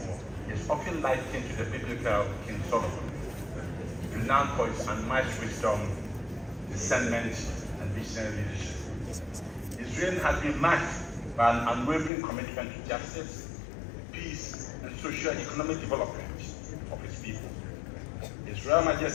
is often likened to the biblical King Solomon, renowned for his unmatched wisdom, discernment, and visionary leadership. His reign has been marked by an unwavering commitment to justice, peace, and socio-economic development of his people. His Royal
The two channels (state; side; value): drops out; right; at 12.1 s